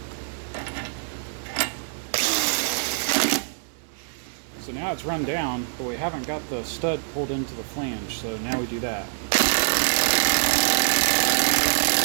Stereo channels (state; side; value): silent; left; 62 dB below the other